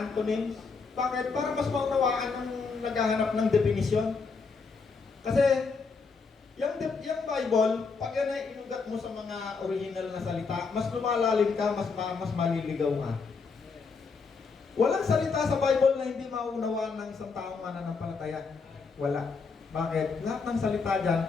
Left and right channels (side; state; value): right; quieter; 4.8 dB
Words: Bakit? Para mas maunawaan ang naghahanap ng definition. Kasi, yung Bible, pag yan ay inugat mo sa mga original na salita, mas lumalalim ka, mas maliligaw ka. Walang salita sa Bible na hindi maunawaan ng isang taong mananampalataya. Wala. Bakit? Lahat ng salita dyan,